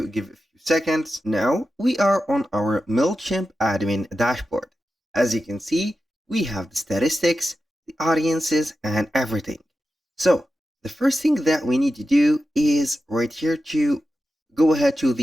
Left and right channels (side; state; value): both; normal; correlation 0.91